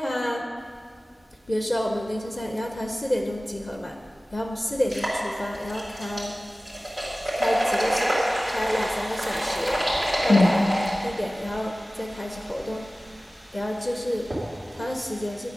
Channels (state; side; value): normal; both; correlation 0.97